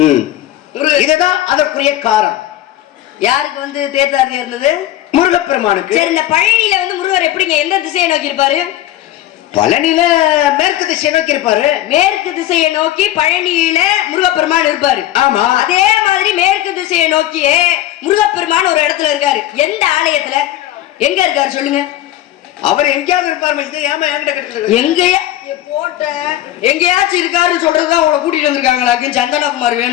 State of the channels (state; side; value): quieter; right; 13.6 dB